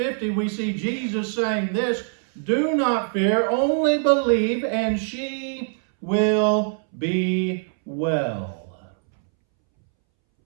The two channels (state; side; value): silent; left; 63 dB below the other